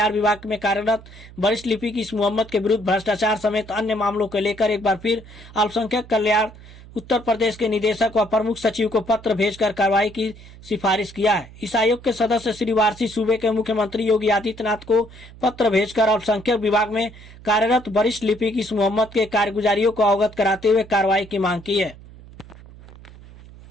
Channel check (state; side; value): noise; right; hum, 19 dB below the sound